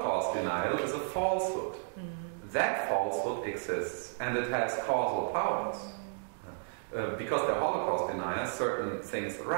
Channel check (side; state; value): left; silent; digital silence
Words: denial is a falsehood. That falsehood exists, and it has causal powers. Because they're Holocaust deniers, certain things